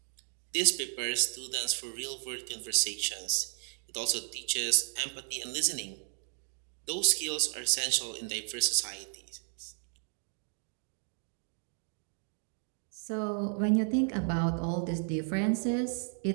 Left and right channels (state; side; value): silent; left; 55 dB below the other